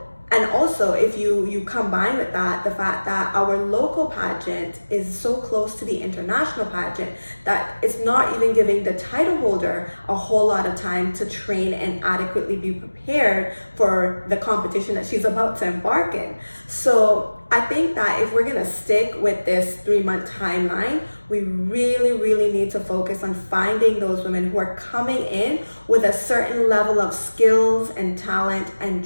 and also if you combine with that the fact that our local pageant is so close to the international pageant that it's not even giving the title holder a whole lot of time to train and adequately be prepared for the competition that she's about to embark in. So I think that if we're gonna stick with this 3-month timeline, we really need to focus on finding those women who are coming in with a certain level of skills and talent and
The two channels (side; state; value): both; inverted; correlation -1.00